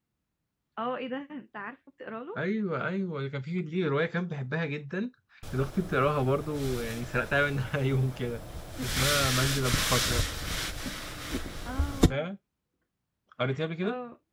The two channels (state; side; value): identical; both; correlation 1.00